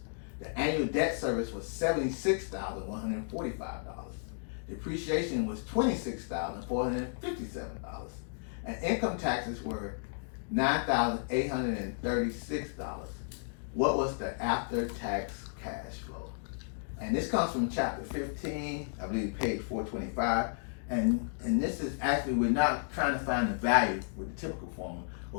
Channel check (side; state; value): right; silent; digital silence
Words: The annual debt service was $76,145. Depreciation was $26,457. And income taxes were $9,836. What was the after-tax cash flow? And this comes from chapter 15, I believe page 425. And this is actually, we're not trying to find the value with the typical formula,